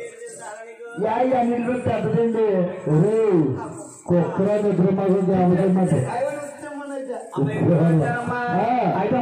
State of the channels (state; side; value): identical; both; correlation 1.00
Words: అన్నింటిలో పెద్దదండి. కుక్కర నిద్ర మాకు గ్రామసభ అయితే